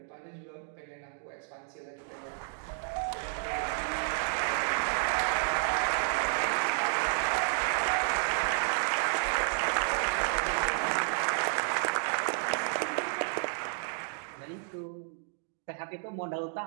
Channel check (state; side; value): silent; left; digital silence